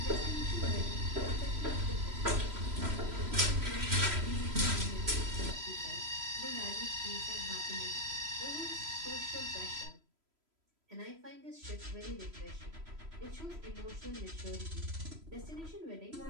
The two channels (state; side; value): late; left; 3.0 ms